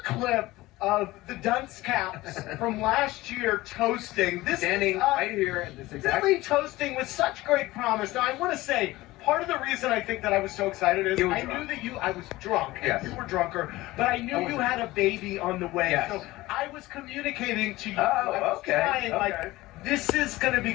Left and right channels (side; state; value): right; quieter; 18.6 dB